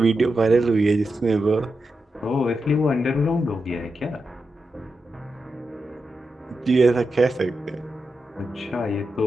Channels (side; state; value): both; normal; correlation 0.88